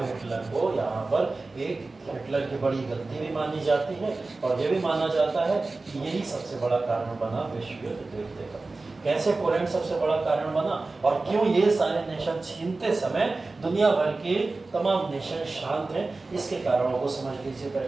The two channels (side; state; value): left; quieter; 3.5 dB